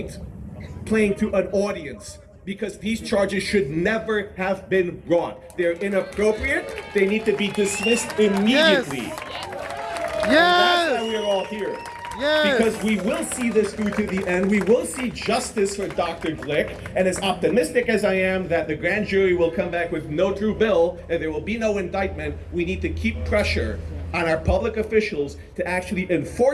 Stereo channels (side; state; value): both; identical; correlation 1.00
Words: playing to an audience, because these charges should never have been brought. They're inappropriate, they need to be dismissed immediately. That's Yes. why we're all here. Yes. Because we will see this through to the end. We will see justice for Dr. Glick. And as optimistic as I am that the grand jury will come back with no true bill and there will be no indictment, we need to keep pressure on our public officials to actually